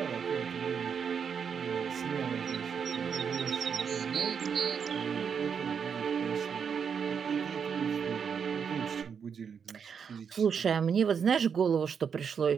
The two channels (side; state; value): left; quieter; 6.8 dB